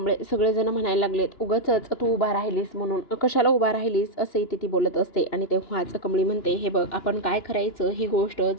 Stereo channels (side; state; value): right; late; 2.9 ms